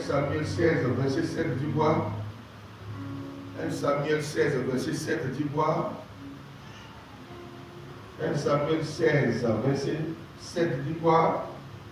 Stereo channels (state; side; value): identical; both; correlation 1.00